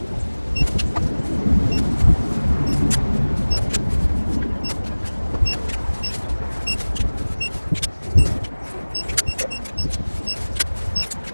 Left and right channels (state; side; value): inverted; both; correlation -1.00